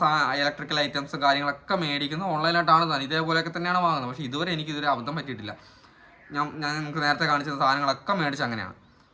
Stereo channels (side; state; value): both; identical; correlation 1.00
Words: ഇലക്ട്രിക്കൽ ഐറ്റംസും കാര്യങ്ങളൊക്കെ മേടിക്കുന്നത് ഓൺലൈനായിട്ടാണ് തന്നെ, ഇതേപോലെയൊക്കെ തന്നെയാണ് വാങ്ങുന്നത്. പക്ഷേ ഇതുവരെ അബദ്ധം പറ്റിയിട്ടില്ല. ഞാൻ നിങ്ങൾക്ക് നേരത്തെ കാണിച്ച സാധനങ്ങളൊക്കെ മേടിച്ച് അങ്ങനെയാണ്.